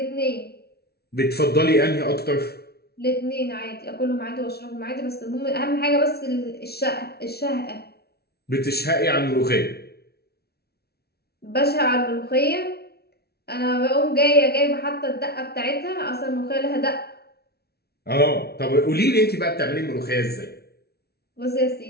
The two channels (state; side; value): late; right; 0.46 ms